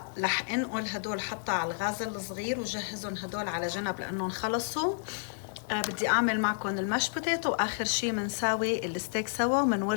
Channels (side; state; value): right; silent; digital silence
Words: رح انقل هدول حطها على الغاز الصغير وجهزهم هدول على جنب لأنهم خلصوا. بدي أعمل معكم الماش بوتيتو، وآخر شي منساوي الستيك سوا